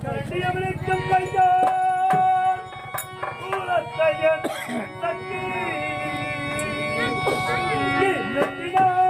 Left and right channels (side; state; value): both; identical; correlation 1.00